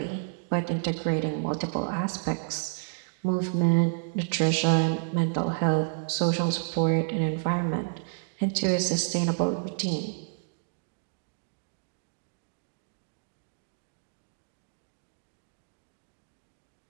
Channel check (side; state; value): left; silent; digital silence